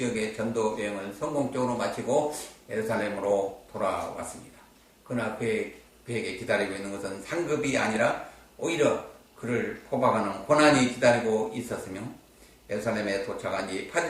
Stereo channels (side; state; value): both; identical; correlation 1.00